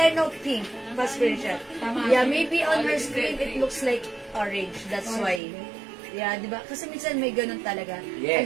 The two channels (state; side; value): drops out; left; at 5.4 s